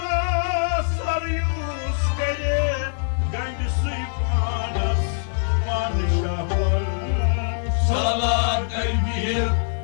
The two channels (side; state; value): right; silent; digital silence